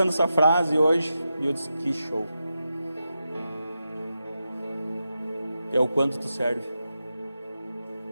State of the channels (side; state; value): both; inverted; correlation -0.89